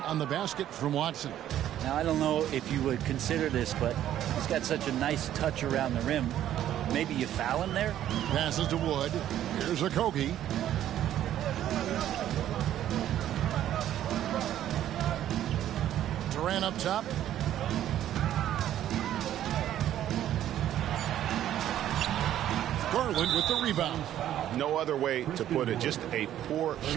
on the basket from Watson. Now, I don't know if you would consider this, but he's got such a nice touch around the rim. Maybe you foul him there? Passes to Wood. Here's Okogie. Durant up top. Garland with the rebound. No other way to put it. Just a poor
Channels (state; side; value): quieter; left; 11.7 dB